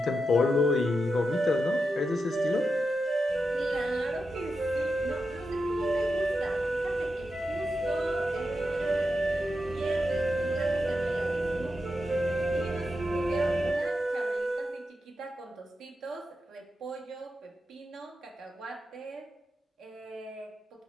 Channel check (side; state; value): both; normal; correlation 0.88